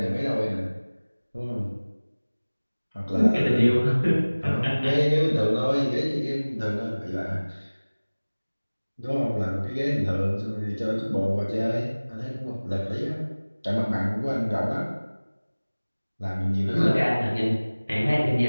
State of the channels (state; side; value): inverted; both; correlation -1.00